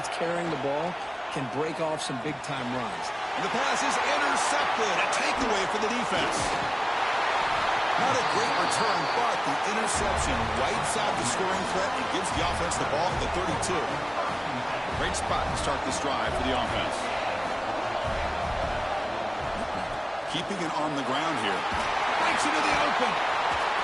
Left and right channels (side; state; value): both; identical; correlation 1.00